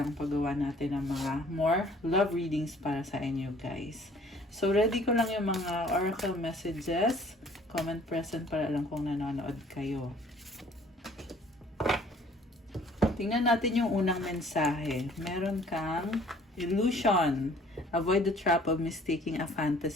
paggawa natin ng mga more love readings para sa inyo, guys. So, ready ko lang yung mga oracle messages. Comment present para alam kung nanonood kayo. Tingnan natin yung unang mensahe. Meron kang illusion. Avoid the trap of mistaking a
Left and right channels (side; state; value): both; normal; correlation 0.55